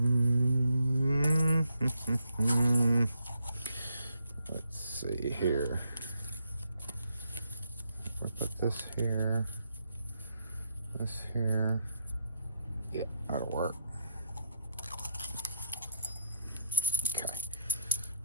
Let's see here. We put this here, this here. Yeah, that'll work. Okay.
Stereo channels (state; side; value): inverted; both; correlation -0.74